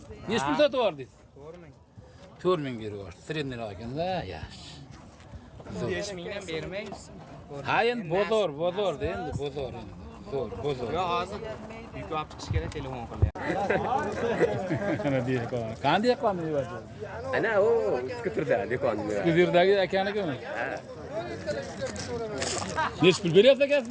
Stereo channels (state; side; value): identical; both; correlation 1.00